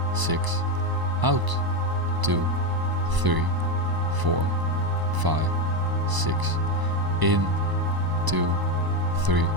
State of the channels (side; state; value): left; late; 1.0 ms